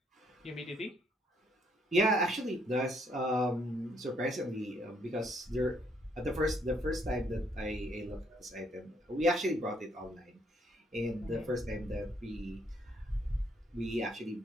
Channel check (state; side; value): normal; both; correlation 0.70